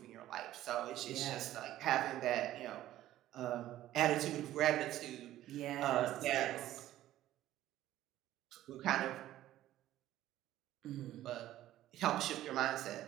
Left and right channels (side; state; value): left; quieter; 13.8 dB